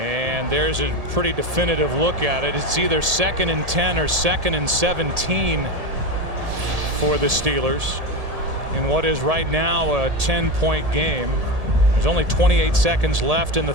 there's a pretty definitive look at it. It's either 2nd and 10 or 2nd and 17 for the Steelers in what is right now a 10-point game. There's only 28 seconds left in the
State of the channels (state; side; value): late; left; 1.7 ms